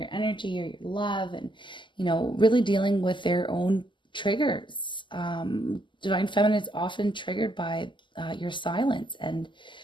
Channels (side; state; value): right; late; 0.24 ms